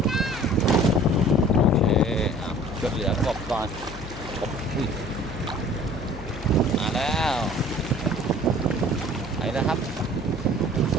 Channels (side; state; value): left; noise; hum, 14 dB below the sound